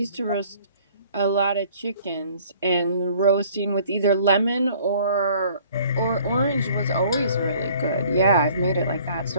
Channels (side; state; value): both; inverted; correlation -0.55